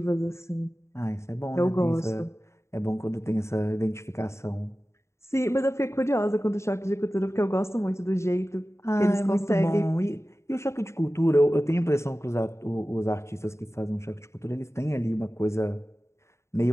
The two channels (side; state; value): right; late; 0.13 ms